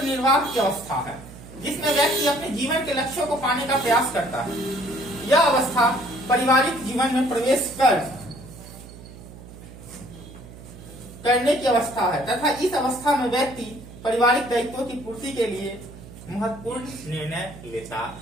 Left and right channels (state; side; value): noise; right; hum, 17 dB below the sound